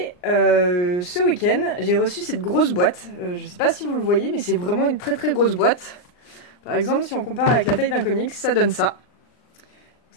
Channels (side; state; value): right; late; 39 ms